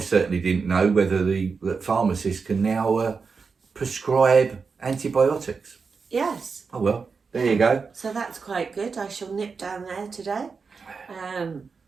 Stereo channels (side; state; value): left; quieter; 5.1 dB